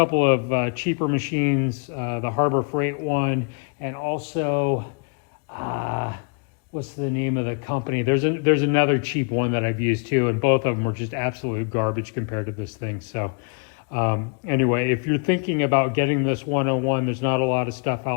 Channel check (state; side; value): quieter; right; 38.0 dB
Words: of cheaper machines, the Harbor Freight one, and also what's the name of the company? There's another cheap one that I've used too, and both of them were just absolute garbage compared to this thing. So anyway, if you're thinking about getting this 101, there's not a lot of stuff